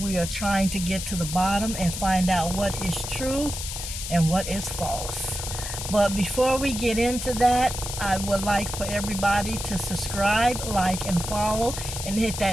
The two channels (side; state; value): left; noise; hiss, 6 dB below the sound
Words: are trying to get to the bottom and find out what is true and what is false. But before we get into that, I would like for everybody to subscribe, like, and follow, and hit